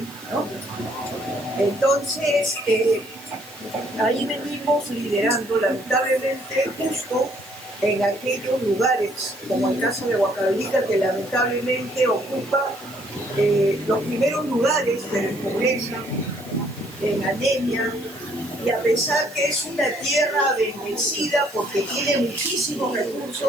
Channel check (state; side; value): noise; right; hiss, 21 dB below the sound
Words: ¿no? Entonces, ahí venimos liderando, lamentablemente, justo en aquellos lugares, como el caso de Huancavelica, que lamentablemente ocupa los primeros lugares de pobreza, en anemia, y a pesar que es una tierra bendecida porque tiene muchísimos